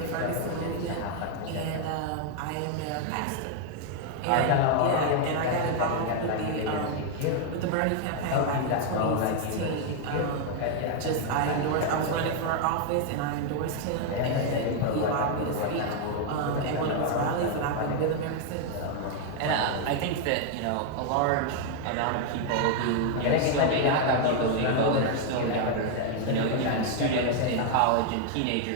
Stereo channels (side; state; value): both; different; correlation 0.00